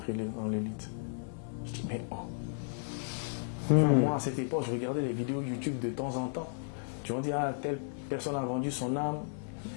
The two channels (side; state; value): right; silent; 55 dB below the other